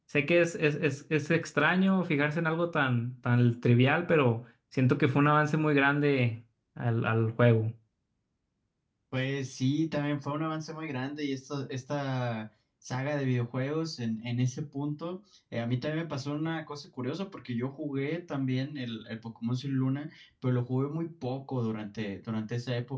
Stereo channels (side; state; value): both; identical; correlation 1.00